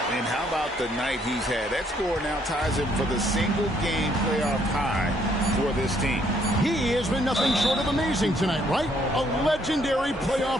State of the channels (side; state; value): both; normal; correlation 0.68